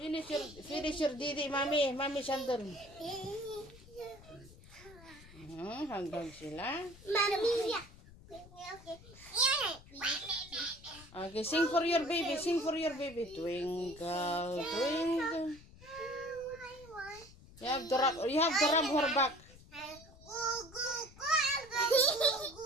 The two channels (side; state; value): left; noise; rumble, 21 dB below the sound